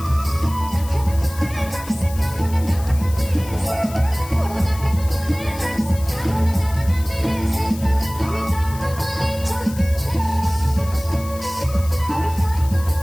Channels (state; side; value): noise; left; hiss, 16 dB below the sound